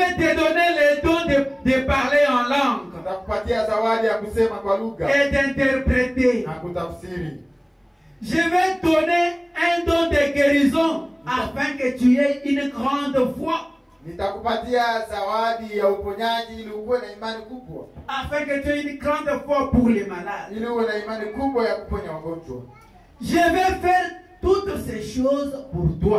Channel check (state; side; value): identical; both; correlation 1.00